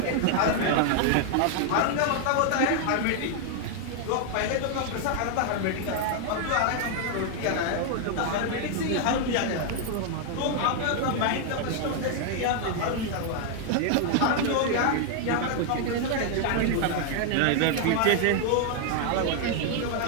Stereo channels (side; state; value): both; different; correlation 0.00